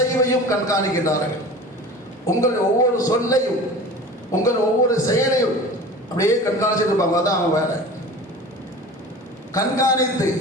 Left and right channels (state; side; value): normal; both; correlation 0.38